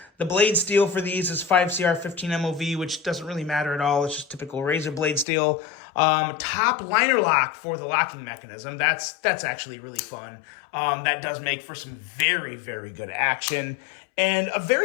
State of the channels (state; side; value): drops out; right; at 5.2 s